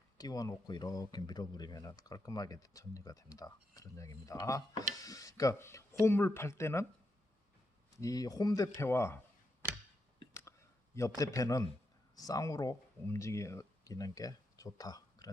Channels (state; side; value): normal; both; correlation 0.84